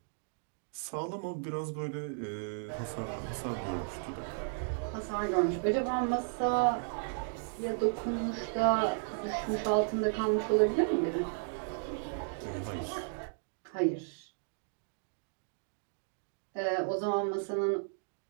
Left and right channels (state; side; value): silent; left; digital silence